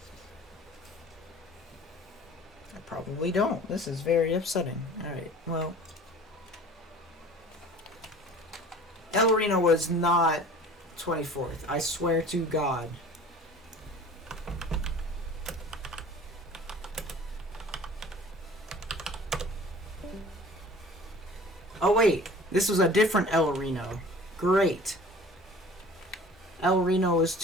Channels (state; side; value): normal; both; correlation 0.45